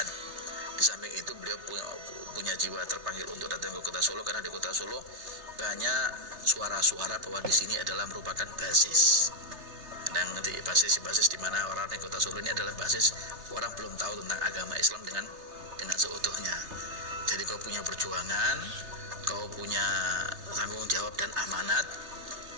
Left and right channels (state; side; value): late; left; 3.3 ms